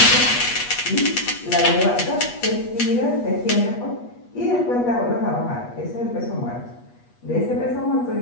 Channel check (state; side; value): late; right; 8.3 ms